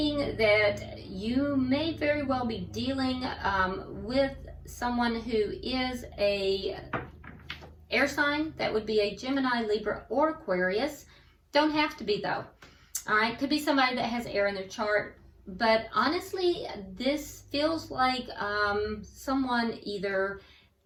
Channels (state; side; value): identical; both; correlation 1.00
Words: that you may very well be dealing with someone who is a air sign. That would be a Gemini, Libra, or Aquarius. Don't have to be though. All right, could be somebody that has air in their chart. But honestly, this feels like someone either